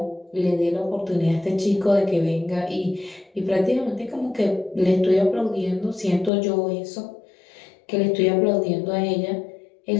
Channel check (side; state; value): right; drops out; at 6.3 s